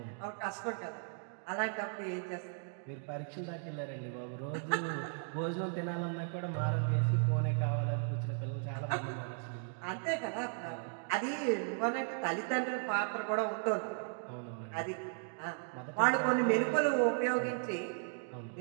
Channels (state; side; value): silent; left; 54 dB below the other